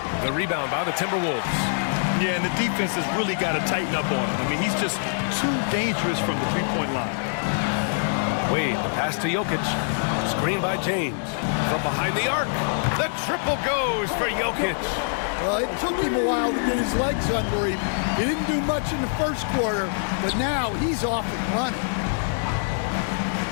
The rebound by the Timberwolves. Yeah, and the defense has really got to tighten up on him. I mean, he's just too dangerous from the three-point line. Wade, the pass to Jokic. Screen by James. From behind the arc. The triple goes for Jokic. Well, it took him a while to get his legs under him. He didn't do much in the first quarter, but now he's off and running.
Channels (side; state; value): right; silent; 62 dB below the other